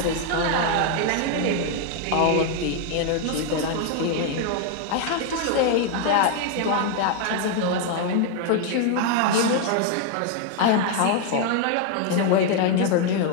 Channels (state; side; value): different; both; correlation 0.01